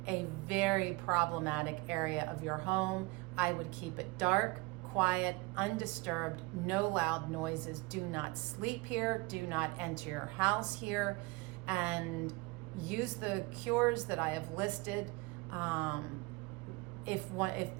a very problematic area of your home. I would keep it dark, quiet, undisturbed, no loud noises. Do not sleep here. Do not enter your house here. And use the cures that I have listed. If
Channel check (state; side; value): quieter; left; 25.1 dB